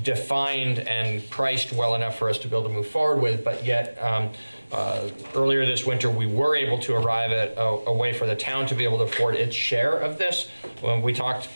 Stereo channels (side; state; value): both; inverted; correlation -1.00